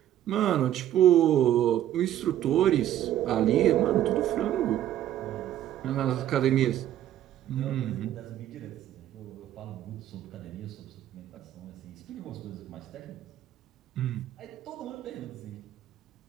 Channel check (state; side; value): quieter; left; 12.0 dB